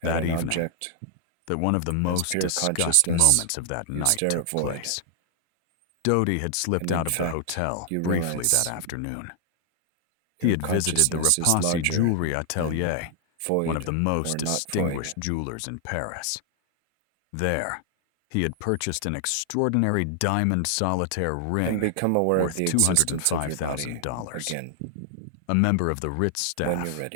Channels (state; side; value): different; both; correlation 0.00